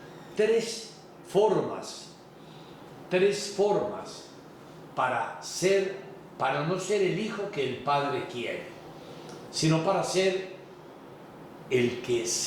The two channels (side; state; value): both; identical; correlation 1.00